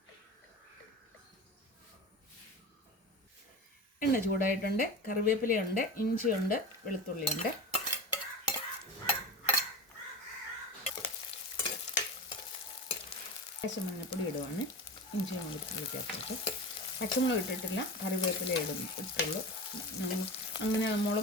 എണ്ണ ചൂടായിട്ടുണ്ട്. കറിവേപ്പിലയുണ്ട്, ഇഞ്ചിയുണ്ട്, വെളുത്തുള്ളിയുണ്ട്. മഞ്ഞപ്പൊടി ഇടുവാണ്. ഇഞ്ചിയും വെളുത്തുള്ളി ചേർത്തിട്ട് പച്ചമുളക് ഇട്ടിട്ടില്ല, കറിവേപ്പില ഇട്ടുള്ളൂ. അങ്ങനെ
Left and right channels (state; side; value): normal; both; correlation 0.29